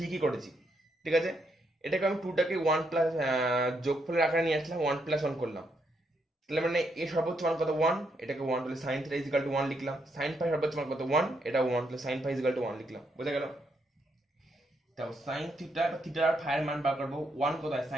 করেছি, ঠিক আছে? এটাকে আমি 2টাকে 1 প্লাস যোগফলের আকারে নিয়ে আসলাম, 1 প্লাস 1 করলাম, তাহলে মানে এ সর্বোচ্চ মান কত? 1, এটাকে 1, তাহলে sign theta is equal to 1 লিখলাম। সাইন ফাই সর্বোচ্চ মান কত? 1, এটা 1, তাহলে sine phi is equal to 1 লিখলাম। বোঝা গেল? তাও সাইন থিটা, থিটা আর ফাই এর মান বার করব। 1 কোথায়?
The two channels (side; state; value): both; normal; correlation 0.77